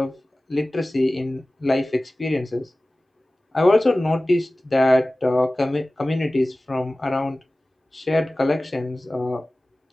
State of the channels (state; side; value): normal; both; correlation 0.97